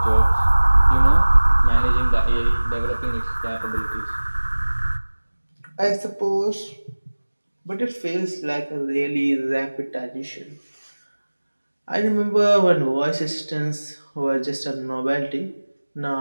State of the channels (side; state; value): both; inverted; correlation -1.00